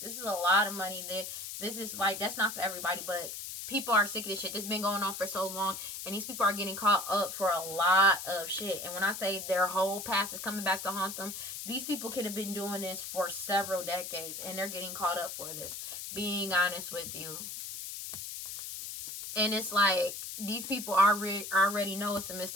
is a lot of money. This is, like, that's not for everybody, but people are sick of this shit. This has been going on for so long, and these people are getting caught up for a lot of shit. And when I say their whole past is coming back to haunt them, these people could have been doing this for several decades, and they're getting caught up for this. Being honest with you. And it's like, these people already know it's a missed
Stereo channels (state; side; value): noise; left; hiss, 7 dB below the sound